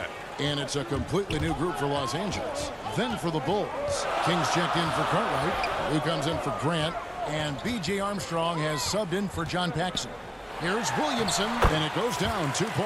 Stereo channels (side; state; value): both; identical; correlation 1.00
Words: And it's a completely new group for Los Angeles. Then for the Bulls. Kings checked in for Cartwright. Lou comes in for Grant. And B.J. Armstrong has subbed in for John Paxson. Here's Williamson, and it goes down 2